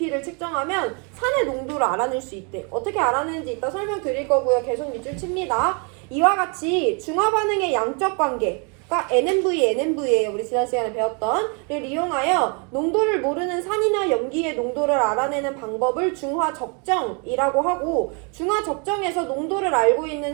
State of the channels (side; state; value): left; quieter; 35.5 dB